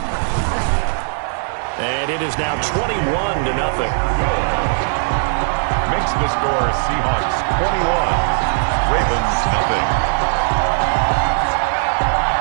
And it is now 21-0. Makes the score Seahawks 21, Ravens nothing.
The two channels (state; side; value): silent; left; digital silence